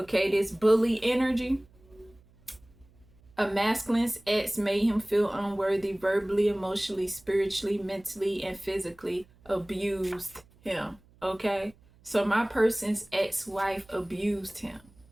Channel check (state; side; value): noise; right; hum, 29 dB below the sound